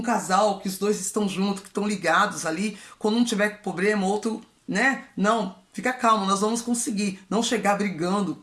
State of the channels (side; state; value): both; identical; correlation 1.00